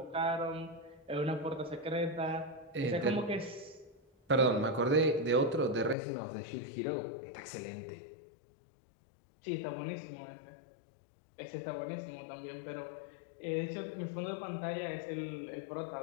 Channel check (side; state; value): right; drops out; at 6.0 s